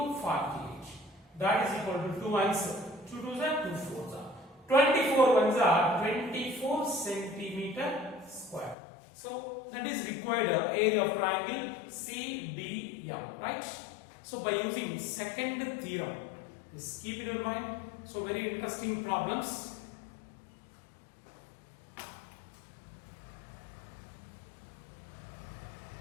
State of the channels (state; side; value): drops out; right; at 8.8 s